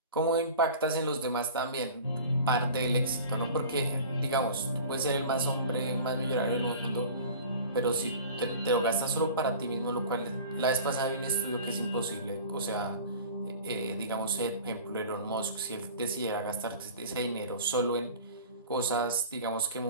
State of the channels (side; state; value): both; inverted; correlation -0.40